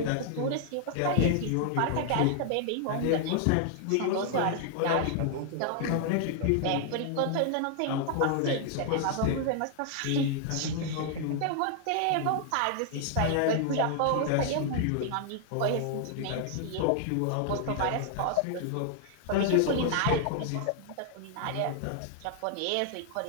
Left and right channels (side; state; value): both; different; correlation 0.00